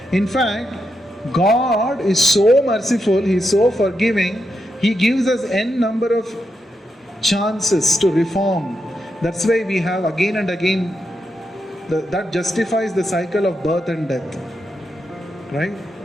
In fact, God is so merciful, he is so forgiving, he gives us n number of chances to reform. That's why we have again and again, that justifies the cycle of birth and death. Right?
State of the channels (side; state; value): both; normal; correlation 0.84